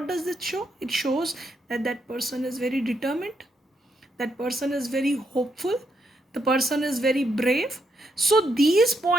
does it show? It shows that that person is very determined, that person is very hopeful, the person is very brave. So these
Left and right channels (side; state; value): both; normal; correlation 0.79